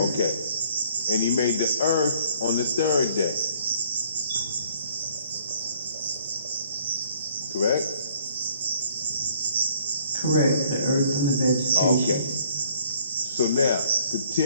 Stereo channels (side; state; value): both; inverted; correlation -0.60